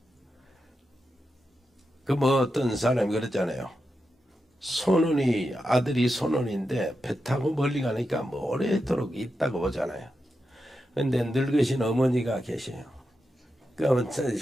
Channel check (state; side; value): normal; both; correlation 0.88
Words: 그 뭐 어떤 사람이 그랬잖아요. 손원이 아들이 손원인데 배 타고 멀리 가니까 뭐 오래도록 있다고 보잖아요. 근데 늙으신 어머니가 계세요.